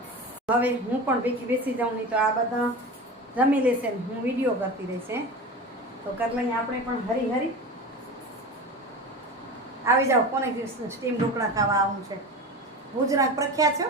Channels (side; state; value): both; normal; correlation 0.29